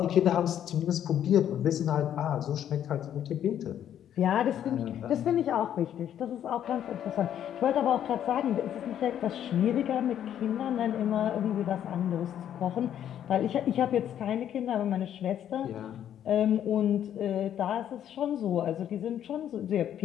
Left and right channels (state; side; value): quieter; right; 10.3 dB